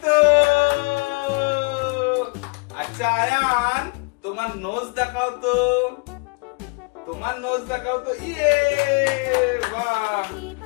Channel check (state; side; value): quieter; right; 31.7 dB